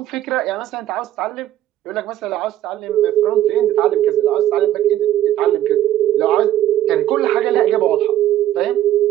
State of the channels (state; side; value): quieter; left; 12.7 dB